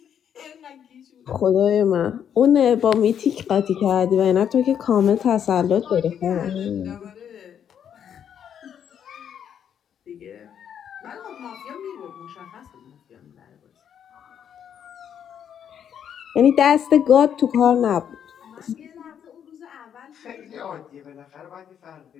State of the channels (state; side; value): quieter; right; 8.8 dB